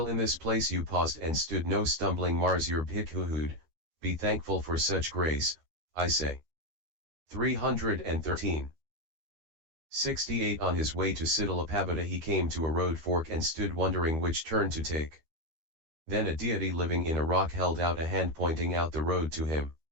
in this place you paused and stood no stumbling mars your bhikkhuhood, be thankful for such grace, I say. 313. 68 On his way to Paþaliputta he came to a road fork and stood wondering which turn to take. Then a deity living in a rock held out a hand pointing out the road to him.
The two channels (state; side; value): late; left; 13 ms